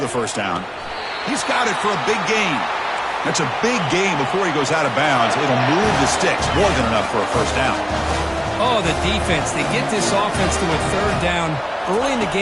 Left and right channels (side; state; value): both; identical; correlation 1.00